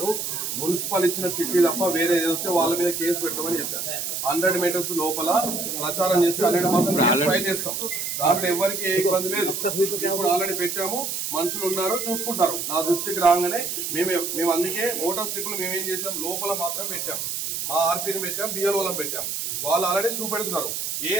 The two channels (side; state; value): right; noise; hiss, 3 dB below the sound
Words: మున్సిపల్ ఇచ్చిన చిట్టి తప్ప వేరే ఏదైతే వాళ్ళ మీద కేసు పెట్టమని చెప్పాను. 100 మీటర్స్ లోపల ప్రచారం చేసి 100% ఫైల్ చేస్తాం. దాంట్లో ఎవరికి ఏ ఇబ్బంది లేదు. ఇప్పుడు ఆల్రెడీ పెట్టాము. మనుషులు ఉన్నారు, చూసుకుంటారు. నా దృష్టికి రాగానే మేము అందుకే ఓటర్ స్లిప్లు మేమేం చేసాం, లోపల మాత్రం పెట్టాం. మా ఆర్పీని పెట్టాం, బిఎల్ఓలను పెట్టాం. వాళ్ళు ఆల్రెడీ చూపెడుతున్నారు. ఏ